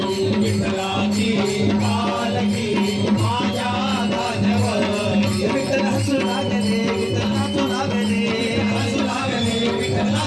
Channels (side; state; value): both; identical; correlation 1.00